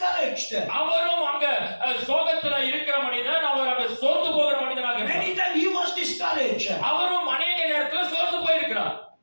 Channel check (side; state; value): both; inverted; correlation -1.00